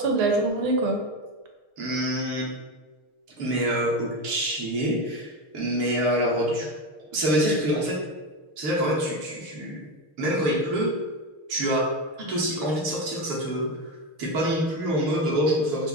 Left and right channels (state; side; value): late; left; 6.5 ms